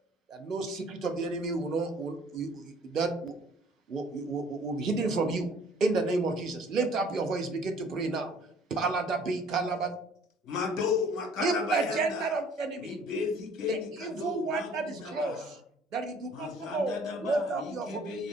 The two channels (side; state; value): both; normal; correlation 0.55